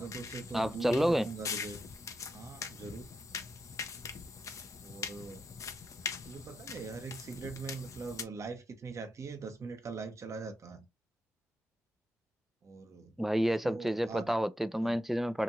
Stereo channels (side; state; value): both; normal; correlation 0.85